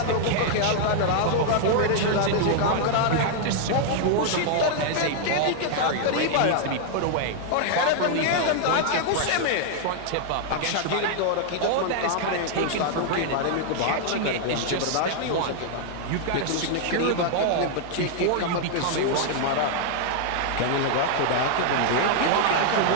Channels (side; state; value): both; different; correlation 0.00